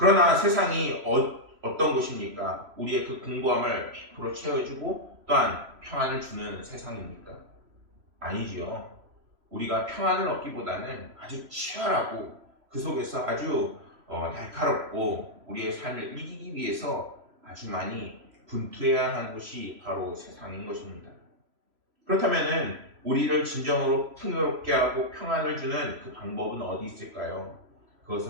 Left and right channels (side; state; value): left; late; 3.0 ms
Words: 세상이 어떤 것입니까? 우리의 그 공고함을 100% 채워주고 또한 평안을 주는 세상입니까? 아니지요. 우리가 평안을 얻기보다는 아주 치열하고 그 속에서 아주 날카롭고 우리의 삶을 이기기 위해서 아주 많이 분투해야 하는 것이 바로 세상인 것입니다. 그렇다면 우리를 진정으로 풍요롭게 하고 평안을 주는 그 방법은 어디 있을까요?